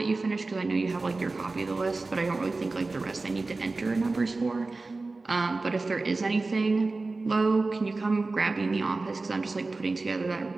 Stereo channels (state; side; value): quieter; left; 3.5 dB